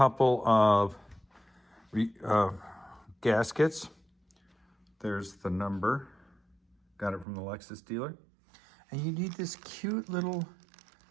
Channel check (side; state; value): left; drops out; at 7.2 s